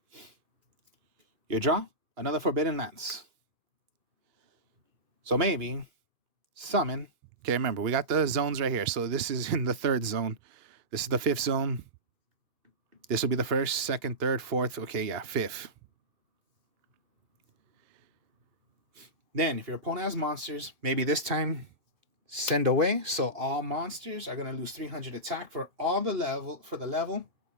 You draw another Forbidden Lance. So maybe summon. Okay, remember, we got the zones right here. So this is in the third zone. This is the fifth zone. This will be the first, second, third, fourth. Okay, yeah, fifth. Then, if your opponent has monsters, maybe this time send away. So all monsters are going to lose 300 attack for the level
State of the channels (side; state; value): left; late; 2.9 ms